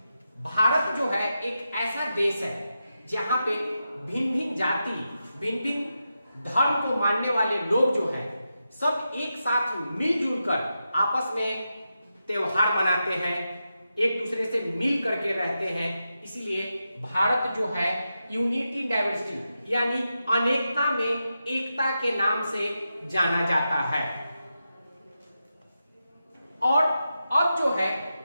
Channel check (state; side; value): inverted; both; correlation -0.89